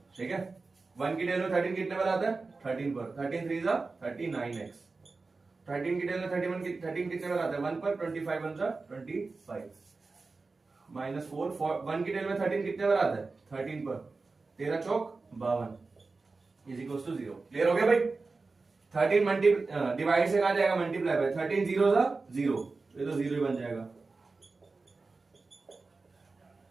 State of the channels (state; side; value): quieter; left; 3.9 dB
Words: ठीक है। 1 की टेल में 13 कितने पर आता है, 13 पर, 13 3 जा 39x, 13 की टेल में 13 कितने पर आता है 1 पर, 25 1 जा 25 माइनस 4, 1 की टेल में 13 कितने पर आता है 13 पर, 13 चौक 52 इज इक्वल टू 0। क्लियर हो गया भाई। 13 डिवाइड से कहा जाएगा मल्टीप्लाई बाय, 13 0 जा 0, ये तो 0 ही बन जाएगा।